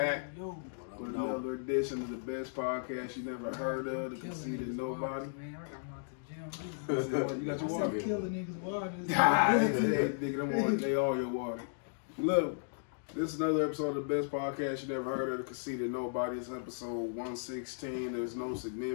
with another edition of the best podcast you never heard of, The Conceited Knowbody. You got your water? Killing niggas' water. They all your water. Look, this is another episode of the best podcast you never heard of, The Conceited Knowbody. It's episode 116. There's no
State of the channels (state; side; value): silent; right; digital silence